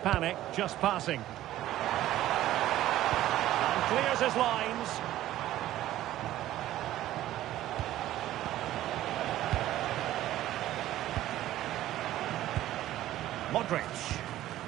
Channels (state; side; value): quieter; left; 14.1 dB